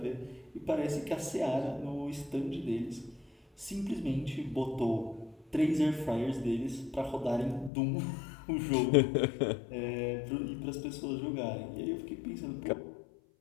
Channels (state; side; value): drops out; right; at 7.7 s